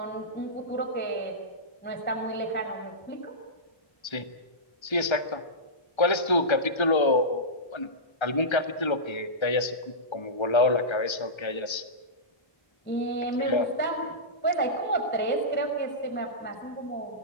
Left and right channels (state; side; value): late; right; 1.3 ms